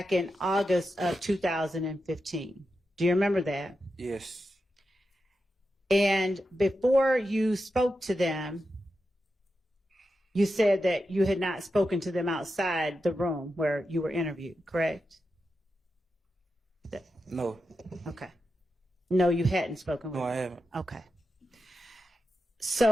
in August of 2015. Do you remember that? Yes. And before you spoke to them, you said that you had not spoken to them outside the room where you were interviewed, correct? No. Okay. No, you hadn't spoken with No, I them. haven't. Okay.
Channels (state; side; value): normal; both; correlation 0.89